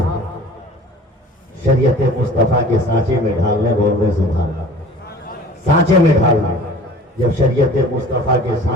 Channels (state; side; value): normal; both; correlation 0.45